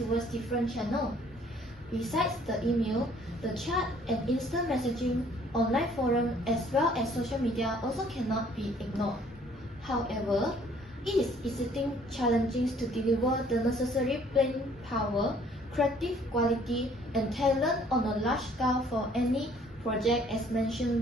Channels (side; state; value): both; normal; correlation 0.59